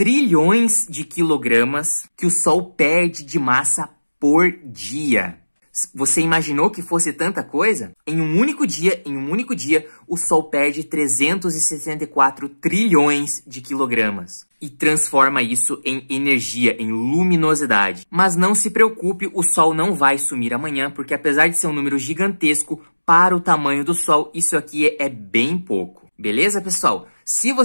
de quilogramas que o Sol perde de massa por dia. Você imaginou que fosse tanta coisa? Em um único dia, o Sol perde 364 trilhões de quilogramas e transforma isso em energia, em luminosidade. Mas não se preocupe, o Sol não vai sumir amanhã, porque apesar de ser um número gigantesco, para o tamanho do Sol, isso aqui é bem pouco. Beleza, pessoal? Se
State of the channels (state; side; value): inverted; both; correlation -1.00